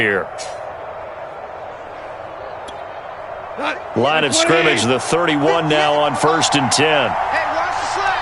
Line of scrimmage, the 31 now on 1st and 10. Hey, watch the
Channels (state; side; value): identical; both; correlation 1.00